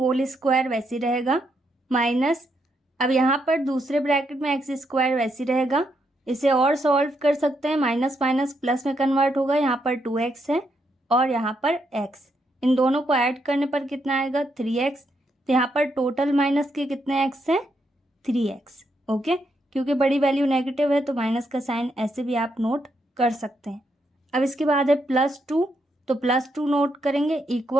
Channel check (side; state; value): both; normal; correlation 0.78